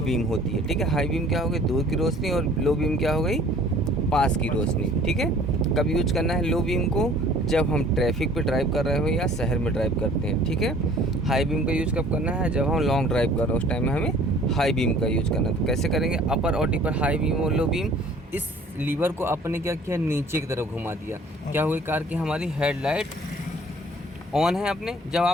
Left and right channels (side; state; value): both; normal; correlation 0.52